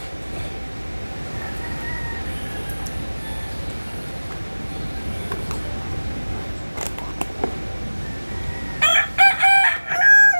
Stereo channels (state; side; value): inverted; both; correlation -1.00